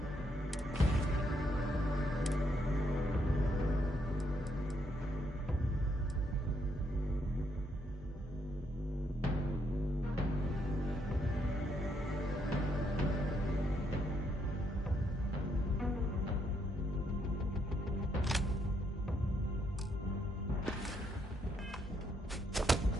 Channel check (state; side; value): normal; both; correlation 0.75